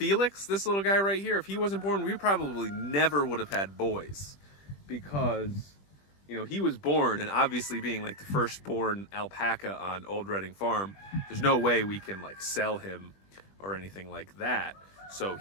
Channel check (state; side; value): late; right; 20 ms